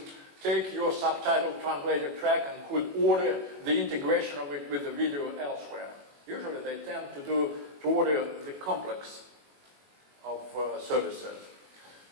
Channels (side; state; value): left; late; 21 ms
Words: take your subtitle translated track and could order the integration of it with the video elsewhere. Usually they tend to order the complex of services.